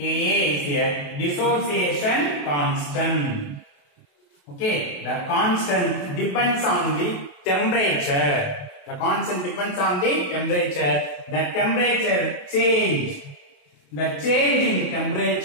a dissociation constant. Okay, the constant depends on the temperature. The constant depends on the temperature. The temperature change. The change in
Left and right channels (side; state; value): right; late; 28 ms